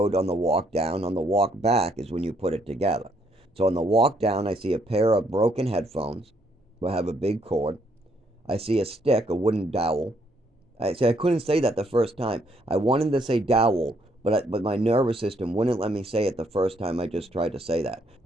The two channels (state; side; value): normal; both; correlation 0.70